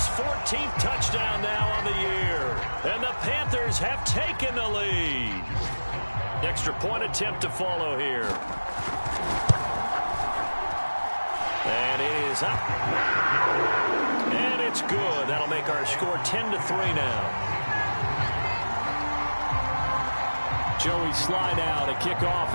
14th touchdown now on the year. And the Panthers have taken the lead. Extra point attempt to follow here. And it is up. And it's good. That'll make our score 10-3 now. Joey slide out, a kickoff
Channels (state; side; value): inverted; both; correlation -1.00